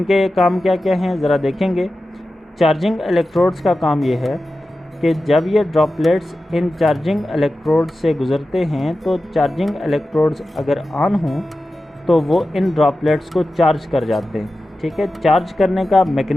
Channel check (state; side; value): normal; both; correlation 0.93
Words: काम क्या क्या हैं ज़रा देखेंगे। चार्जिंग इलेक्ट्रोड्स का काम ये है कि जब ये ड्रॉपलेट्स इन चार्जिंग इलेक्ट्रोड्स से गुज़रते हैं तो चार्जिंग इलेक्ट्रोड्स अगर ऑन हों तो वो इन ड्रॉपलेट्स को चार्ज कर जाते हैं, ठीक है। चार्ज करने का